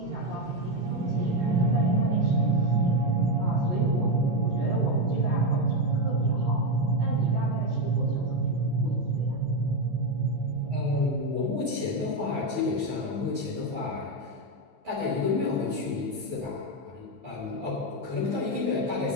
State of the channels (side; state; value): left; late; 16 ms